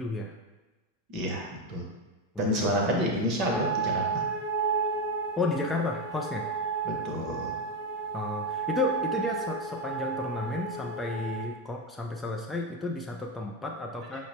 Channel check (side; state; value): both; normal; correlation 0.11